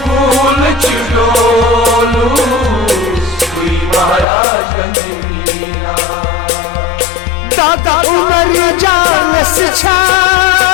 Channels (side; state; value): right; drops out; at 4.2 s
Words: फूल छिड़ोलो महाराजगंज मीना दादा उमर जान से छा